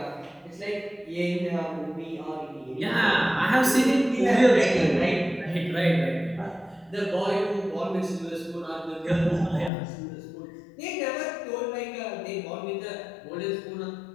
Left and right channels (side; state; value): right; drops out; at 9.7 s